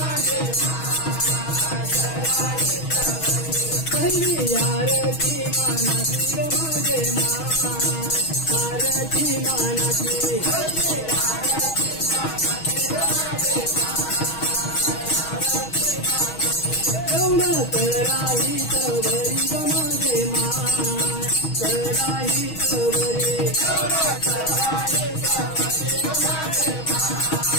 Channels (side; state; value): right; late; 6.3 ms